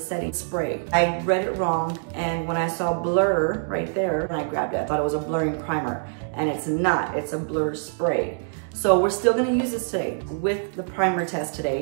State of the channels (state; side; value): silent; left; digital silence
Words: spray. I read it wrong, and when I saw blur right there, and I grabbed it, I thought it was a blurring primer. And it's not, it's a blur spray. So we're still gonna use this today with the primer test